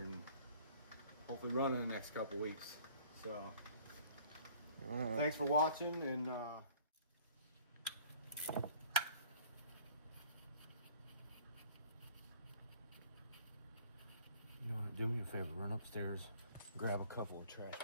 hopefully run in the next couple weeks. So thanks for watching, and you know what, do me a favor, run upstairs, grab a couple of trash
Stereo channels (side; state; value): both; inverted; correlation -0.53